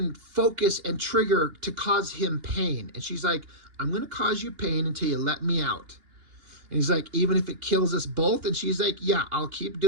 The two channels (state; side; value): late; left; 2.8 ms